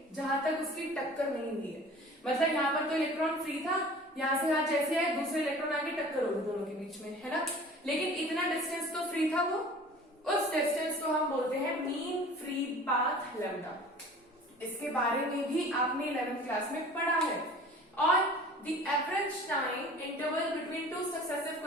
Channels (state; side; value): normal; both; correlation 0.44